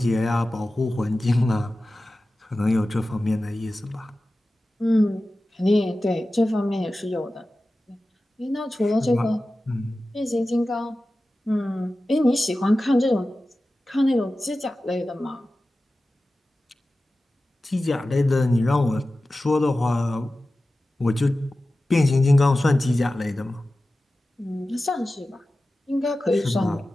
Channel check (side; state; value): both; normal; correlation 0.95